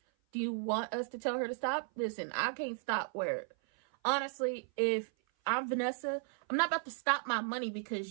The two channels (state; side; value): silent; left; 54 dB below the other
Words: Do you want us to tell her to stop? Listen, I can't stop where, honestly, if I'm Vanessa, I'm not about to stop my money